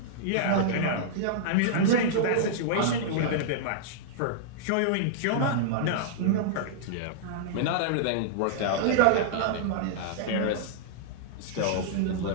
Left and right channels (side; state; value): both; different; correlation -0.02